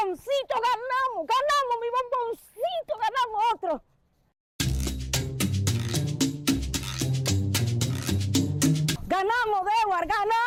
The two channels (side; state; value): both; identical; correlation 1.00